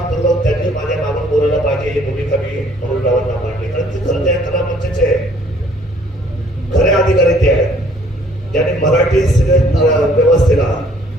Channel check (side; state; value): both; normal; correlation 0.60